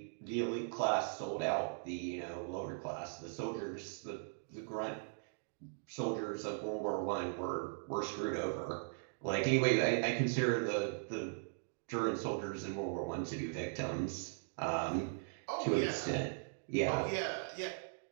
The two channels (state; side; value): silent; left; digital silence